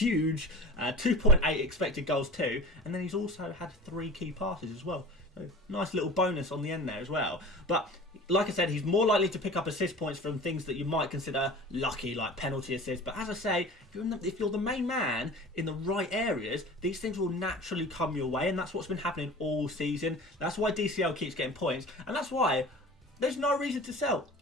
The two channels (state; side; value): normal; both; correlation 0.38